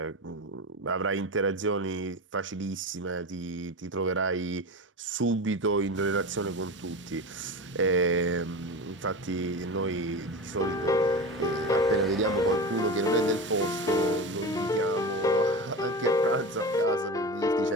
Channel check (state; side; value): normal; both; correlation 0.26